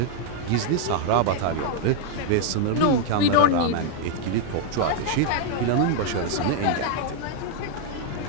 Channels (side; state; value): both; different; correlation 0.00